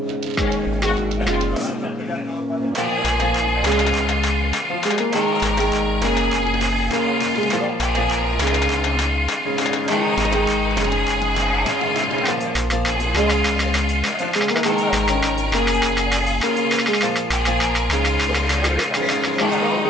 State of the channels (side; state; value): both; normal; correlation 0.68